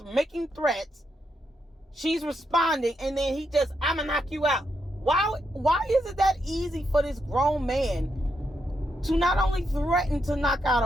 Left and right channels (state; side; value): normal; both; correlation 0.81